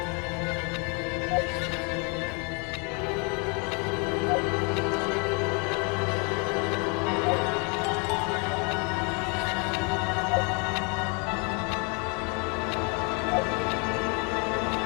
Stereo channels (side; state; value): right; quieter; 33.3 dB